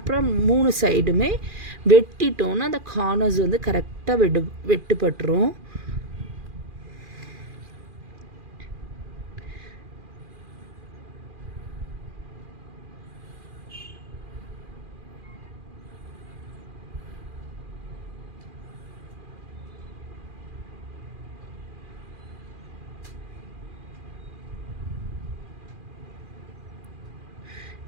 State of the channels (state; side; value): late; left; 2.4 ms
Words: 3 சைடுமே வெட்டிட்டோன்னா அந்த கார்னர்ஸ் வந்து கரெக்டாக வெட்டுப்பட்டுரும்.